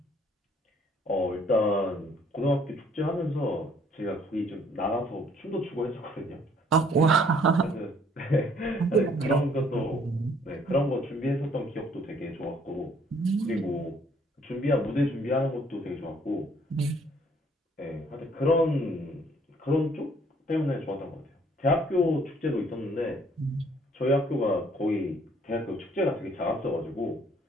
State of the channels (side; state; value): both; normal; correlation 0.62